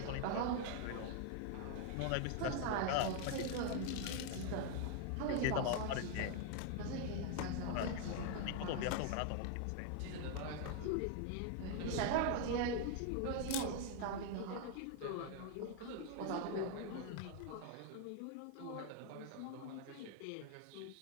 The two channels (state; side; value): different; both; correlation 0.00